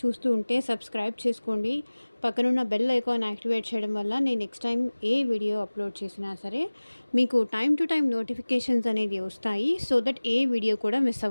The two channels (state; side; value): inverted; both; correlation -1.00